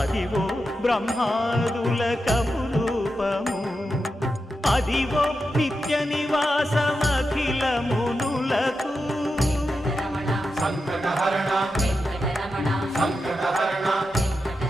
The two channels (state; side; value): normal; both; correlation 0.89